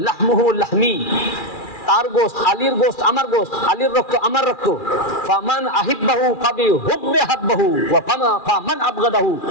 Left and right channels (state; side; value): late; right; 2.3 ms